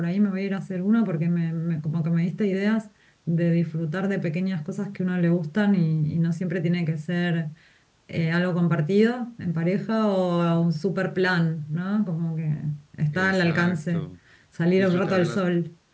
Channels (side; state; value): both; identical; correlation 1.00